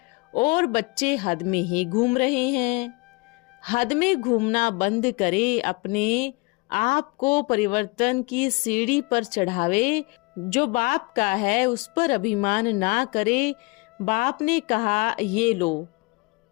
और बच्चे हद में ही घूम रहे हैं। हद में घूमना बंद करे, अपने आप को परिवर्तन की सीढ़ी पर चढ़ावे। जो बाप का है उस पर अभिमान ना करे। बाप ने कहा ये लो,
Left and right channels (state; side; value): quieter; right; 27.1 dB